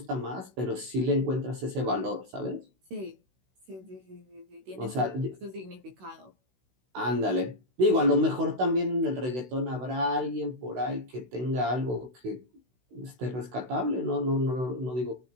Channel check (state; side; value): late; left; 16 ms